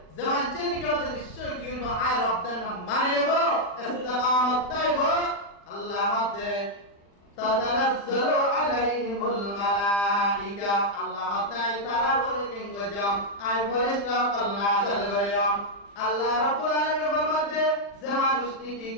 zaman চেনি কেউ নিশ্চয় কি করব আয় রব্দের নাম মানে নেব ইস্তিকামত তাইব আল্লাহ দে তাতানাজ্জালু আলাইহিমুল মালাইকা আল্লাহ তাই তারা বলে কিংগ জাম আয় ফেরেশতা নাযিল করিয়াম আল্লাহ রাব্বুল আলামিন ফরমাতে যে মানুষ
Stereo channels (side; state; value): right; late; 40 ms